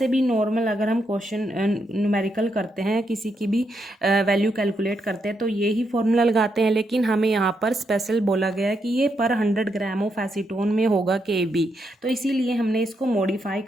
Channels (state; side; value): normal; both; correlation 0.80